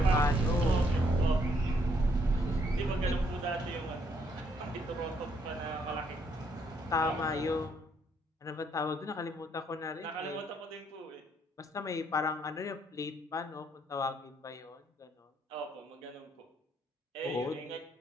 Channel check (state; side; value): normal; both; correlation 0.70